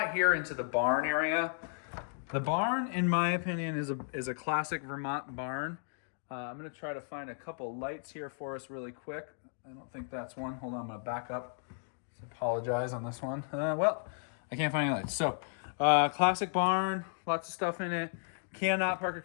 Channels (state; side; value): silent; right; digital silence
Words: here into the barn area. The barn, in my opinion, is a classic Vermont barn. I'm gonna try to find a couple lights here for us really quick. I don't think that's one. Hold on, I'm gonna back up. Apologize on this one. Well, I can't find any lights. So, classic barn, lots of stuff in it. Cannot park a